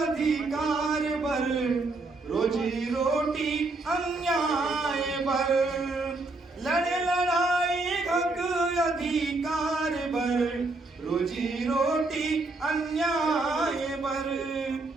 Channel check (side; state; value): left; quieter; 3.3 dB